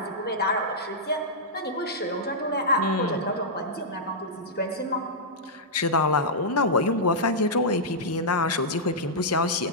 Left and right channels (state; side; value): normal; both; correlation -0.10